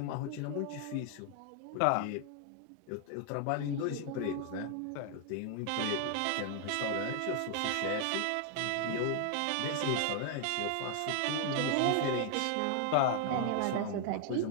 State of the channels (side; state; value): both; different; correlation 0.00